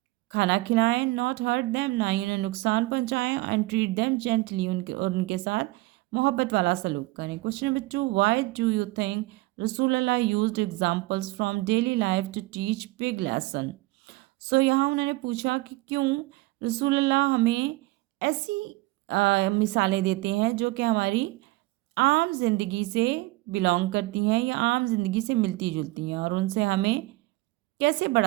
खाना खिलाएं। नॉट हर्ट दैम, ना ही उन्हें नुकसान पहुंचाएं। एंड ट्रीट दैम जेंटली, उनके साथ मोहब्बत वाला सलूक करें। Question number 2, why do you think Rasool Allah used examples from daily life to teach big lesson. So यहाँ उन्होंने पूछा कि क्यों रसूल अल्लाह हमें ऐसी मिसालें देते हैं जो कि हमारी आम जिंदगी से बिलोंग करती हैं या आम जिंदगी से मिलती जुलती हैं और उनसे हमें कैसे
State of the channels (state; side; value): quieter; left; 20.7 dB